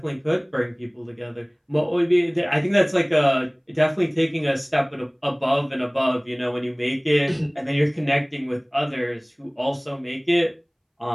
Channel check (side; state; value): both; identical; correlation 1.00